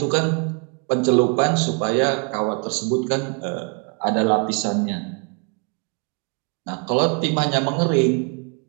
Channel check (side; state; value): left; quieter; 36.4 dB